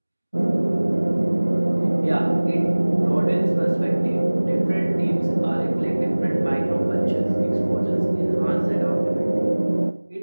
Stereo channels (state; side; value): inverted; both; correlation -1.00